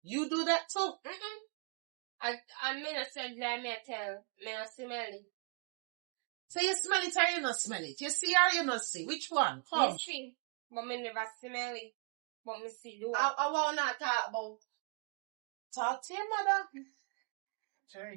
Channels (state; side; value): quieter; left; 35.8 dB